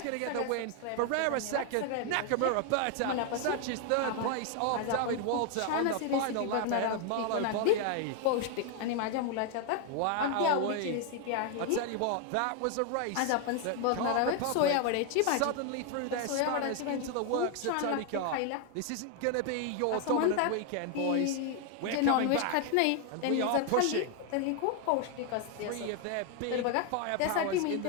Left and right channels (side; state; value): both; different; correlation 0.00